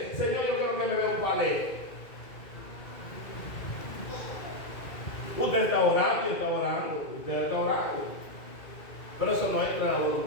Señor, yo quiero que me dé un palé. Usted está orando y está orando. Usted está orando. Pero eso no entra en la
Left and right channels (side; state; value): right; late; 2.3 ms